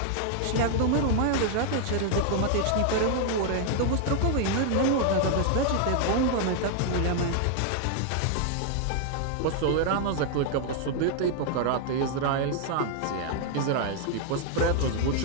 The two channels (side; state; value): both; different; correlation 0.00